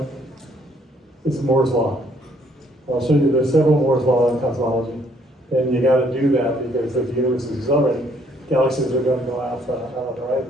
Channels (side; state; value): both; normal; correlation 0.65